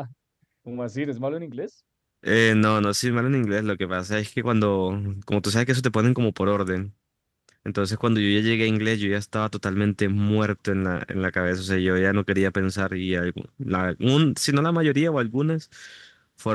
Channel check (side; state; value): both; identical; correlation 1.00